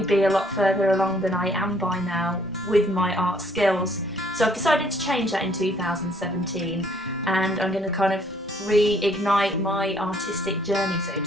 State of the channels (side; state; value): both; normal; correlation 0.63